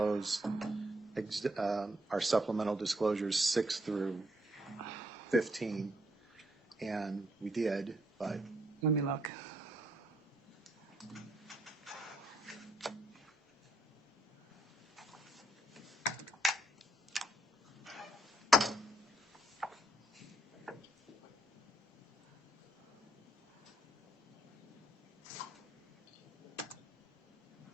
our supplemental disclosures 6 through 15, and we did, but Let me look.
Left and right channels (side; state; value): both; normal; correlation 0.73